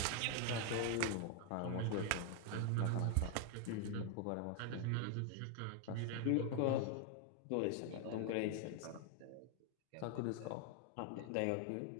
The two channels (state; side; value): different; both; correlation 0.00